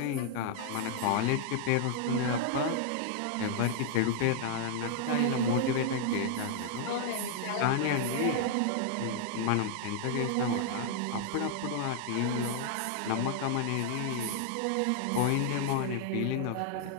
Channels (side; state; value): both; different; correlation 0.00